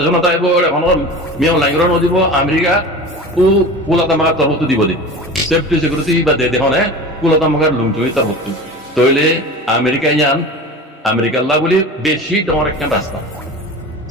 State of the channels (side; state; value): both; normal; correlation 0.34